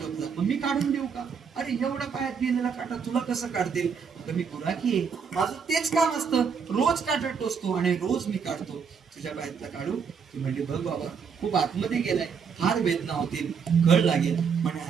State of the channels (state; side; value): quieter; left; 6.3 dB